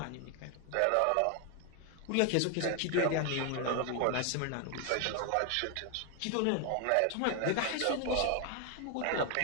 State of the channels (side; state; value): both; different; correlation 0.01